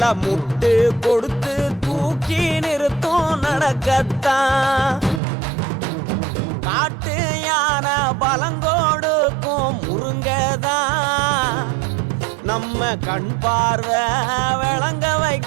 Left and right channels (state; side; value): drops out; left; at 5.2 s